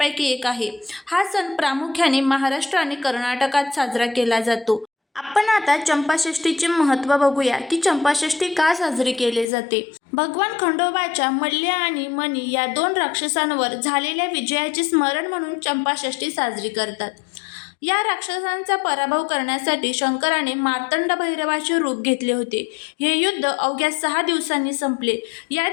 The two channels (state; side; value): drops out; right; at 9.5 s